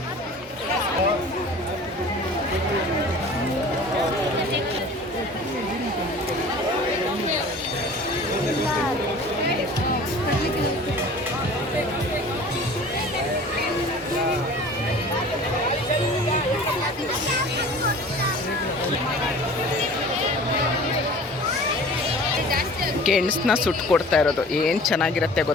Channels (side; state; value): both; normal; correlation 0.43